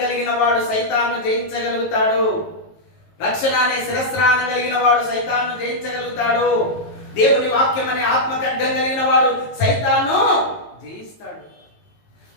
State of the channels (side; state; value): right; late; 19 ms